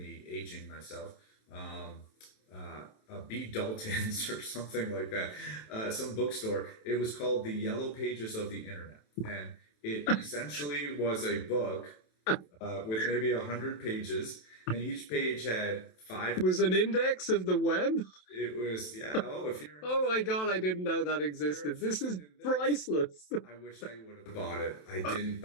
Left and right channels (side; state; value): right; late; 27 ms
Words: aging myself, a B. Dalton's or something like that, some bookstore. It was called The Yellow Pages of the Internet, and it essentially was a book with maybe 100 pages, and each page had 5. It was an index of the web? It was, yeah. Oh, if you're. Oh my God, I didn't know that existed. This is priceless. I wish I would have bought it. I didn't